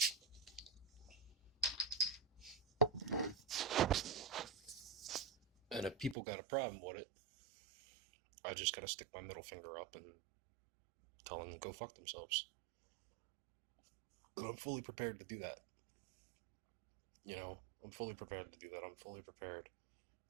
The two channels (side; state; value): left; drops out; at 6.2 s